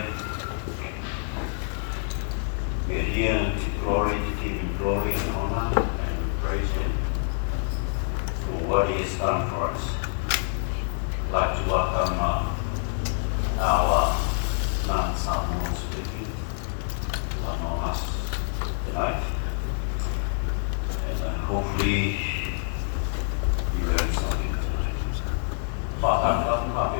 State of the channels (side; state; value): right; silent; 58 dB below the other